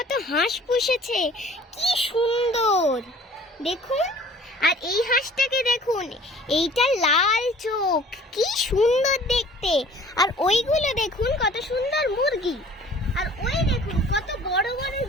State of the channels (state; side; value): normal; both; correlation 0.50